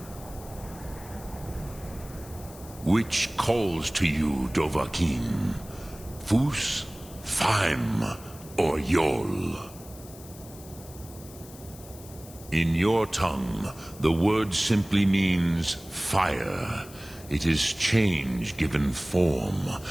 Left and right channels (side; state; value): left; noise; hiss, 19 dB below the sound